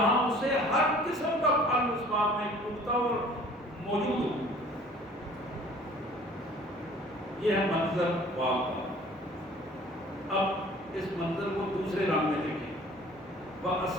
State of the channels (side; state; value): both; normal; correlation 0.51